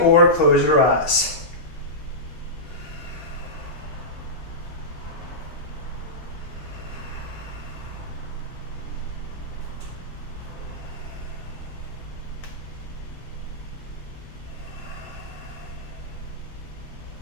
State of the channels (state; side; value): normal; both; correlation -0.14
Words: or close your eyes.